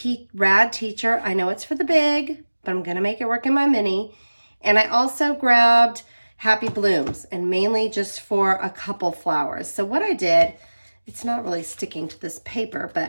rad teacher. I know it's for the big, but I'm going to make it work in my mini. And I also grabbed Happy Blooms, and mainly just for a couple flowers. So what I did, it's not really sticking to this paper,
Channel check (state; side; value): inverted; both; correlation -1.00